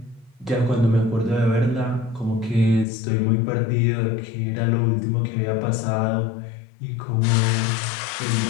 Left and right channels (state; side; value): drops out; right; at 2.9 s